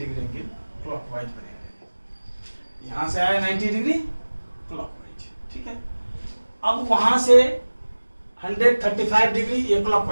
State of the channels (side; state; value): both; inverted; correlation -1.00